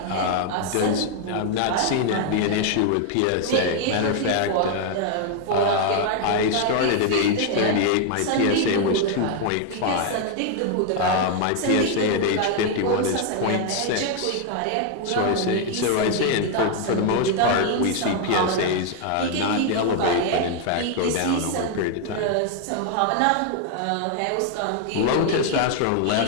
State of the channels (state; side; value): different; both; correlation 0.00